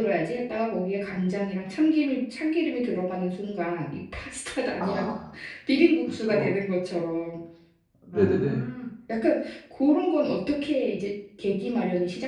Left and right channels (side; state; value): both; identical; correlation 1.00